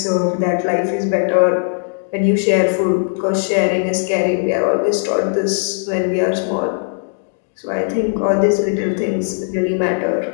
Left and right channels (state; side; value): silent; right; digital silence